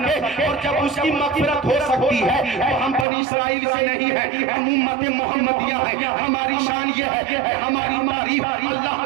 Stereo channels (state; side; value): drops out; left; at 3.1 s